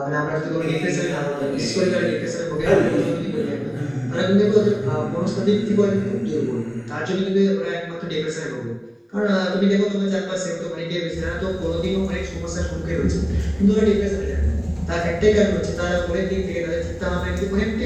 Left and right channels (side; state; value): both; identical; correlation 1.00